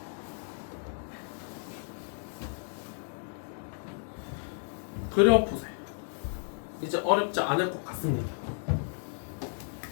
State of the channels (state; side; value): silent; right; digital silence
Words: 그려보세요. 이제 어렵지 않을 것 같습니다.